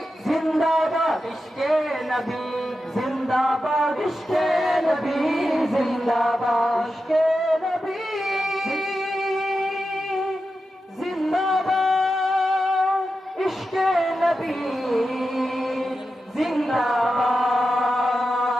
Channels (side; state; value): both; normal; correlation 0.90